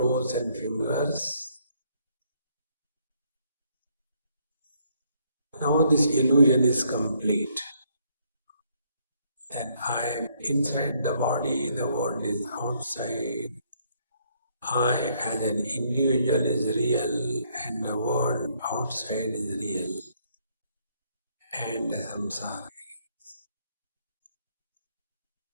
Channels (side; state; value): both; inverted; correlation -0.69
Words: and fingers. Now this illusion is complete. That I am inside the body, the world is outside. I as an individual is real and the world outside is real. And the samsara.